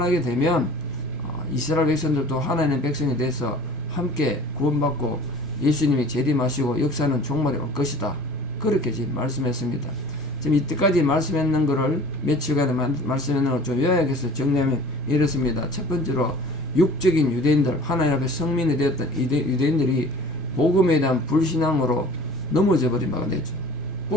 되면 이스라엘 백성들도 하나님의 백성이 돼서 함께 구원받고 예수님이 재림하시고 역사는 종말이 올 것이다. 그렇게 지금 말씀했습니다. 지금 이때까지 말씀했는 것을 며칠간에 말씀했는 걸 좀 요약해서 정리하면 이렇습니다. 첫 번째로 육적인 유대인들, 하나님 앞에 성민이 되었던 유대인들이 복음에 대한 불신앙으로 넘어져 버린 바가 되죠.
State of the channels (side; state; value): both; normal; correlation 0.45